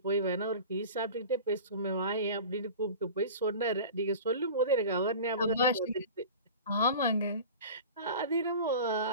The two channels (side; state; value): both; inverted; correlation -0.36